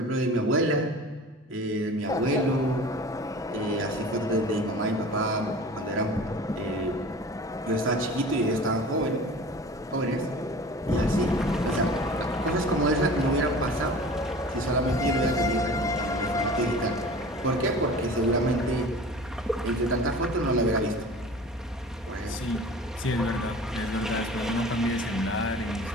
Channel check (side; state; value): both; normal; correlation 0.40